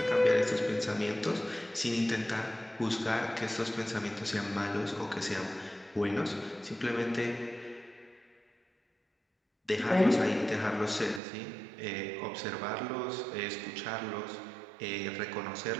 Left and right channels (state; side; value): drops out; left; at 11.2 s